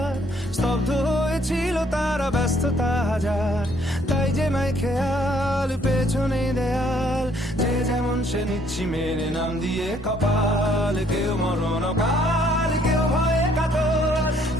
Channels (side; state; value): both; normal; correlation 0.65